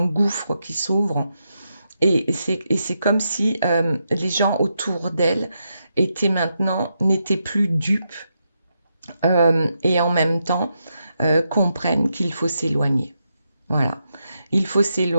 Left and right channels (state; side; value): inverted; both; correlation -0.84